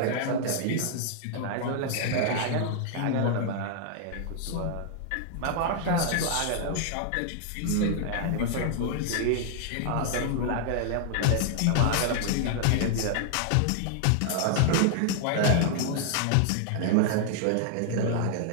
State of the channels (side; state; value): both; different; correlation -0.01